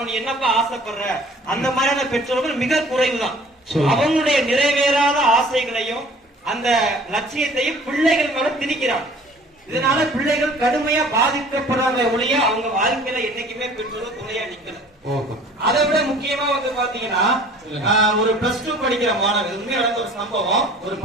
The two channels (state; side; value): normal; both; correlation 0.50